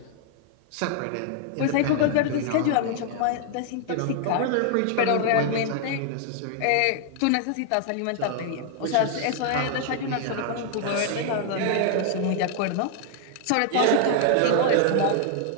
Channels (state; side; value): different; both; correlation 0.00